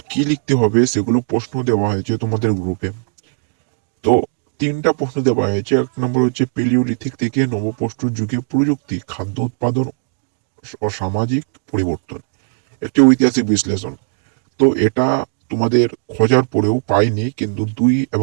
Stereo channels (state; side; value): silent; left; digital silence